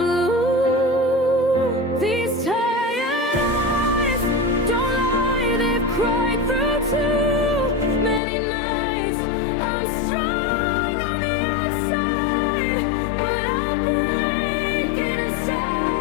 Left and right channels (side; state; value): right; drops out; at 8.2 s